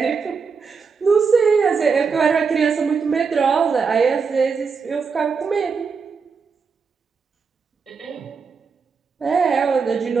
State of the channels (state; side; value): quieter; left; 5.4 dB